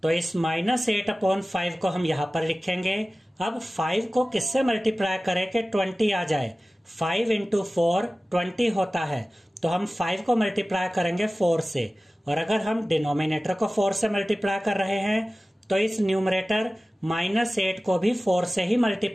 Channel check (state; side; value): normal; both; correlation 0.97